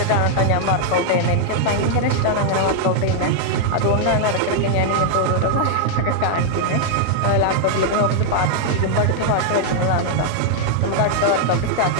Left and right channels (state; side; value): different; both; correlation -0.01